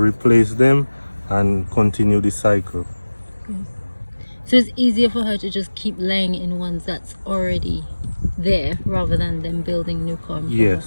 them and continue the cycle. So it's easier for her to just keep laying in ones that's already there rather than them building new comb.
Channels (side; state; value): both; inverted; correlation -1.00